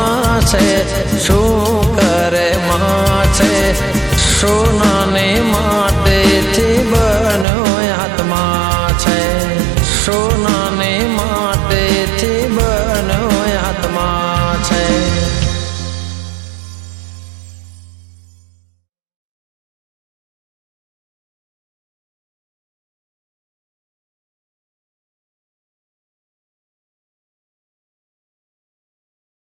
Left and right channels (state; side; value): drops out; left; at 7.5 s